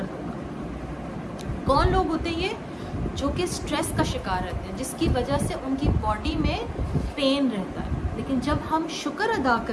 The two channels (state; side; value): identical; both; correlation 1.00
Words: होगा। कौन लोग होते हैं ये? जो कि स्ट्रेस का शिकार रहते हैं, जिसकी वजह से उनकी बॉडी में पेन रहता है। लेकिन जब हम शुक्र अदा